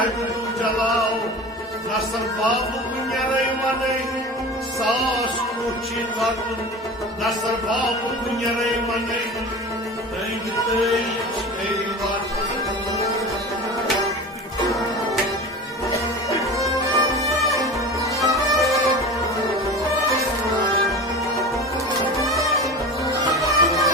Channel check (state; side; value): normal; both; correlation 0.33